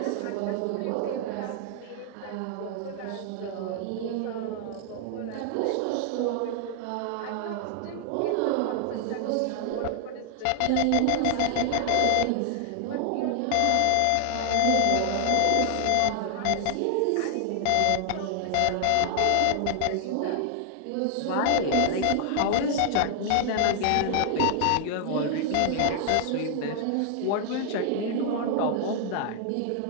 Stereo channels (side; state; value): both; different; correlation 0.00